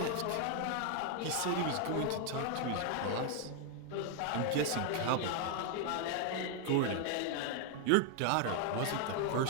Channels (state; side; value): different; both; correlation 0.00